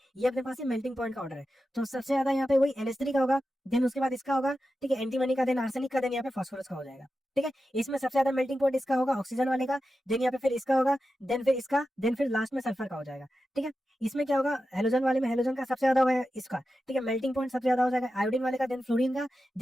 ये अपने पास मेल्टिंग पॉइंट का ऑर्डर है, तो सबसे ज्यादा यहाँ पे वही NH3 का होगा, देन उसके बाद इसका होगा, ठीक है, एंटीमनी का, देन आर्सेनिक का, देन यहाँ पे फास्फोरस का हो जाएगा, ठीक है। इसमें सबसे ज्यादा मेल्टिंग पॉइंट इसका होगा, ऑक्सीजन वाले का, देन यहाँ पे फिर इसका होगा, देन फिर इसका, देन फिर लास्ट में सल्फर का हो जाएगा, ठीक है। इसमें क्या होगा? हेलोजन वाले में हेलोजन का सबसे ज्यादा होगा इसका, ठीक है, मेल्टिंग पॉइंट सबसे ज्यादा हो जाएगा आयोडीन वाले का, देन फ्लोरीन का,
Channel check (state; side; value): normal; both; correlation 0.91